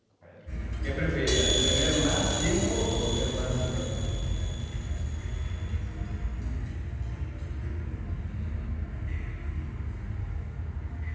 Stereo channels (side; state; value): both; identical; correlation 1.00